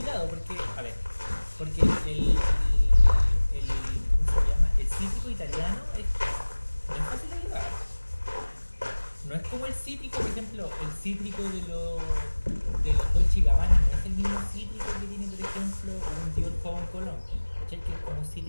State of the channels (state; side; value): inverted; both; correlation -1.00